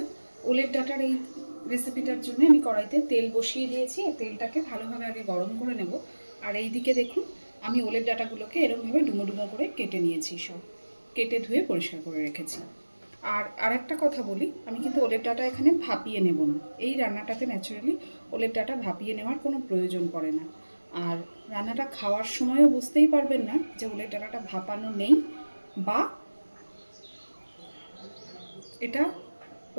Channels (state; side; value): inverted; both; correlation -1.00